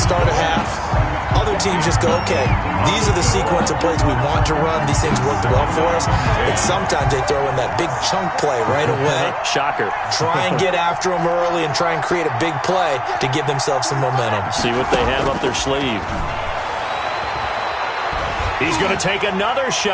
a half. Other teams just go, okay, these are the sequence of plays we want to run. These things worked well for us. And sometimes they throw in that big chunk play right away. Shocker. Try and get after them early and try and create a big play to give themselves some momentum. See what they have up their sleeve. He's going to take another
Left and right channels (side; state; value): both; identical; correlation 1.00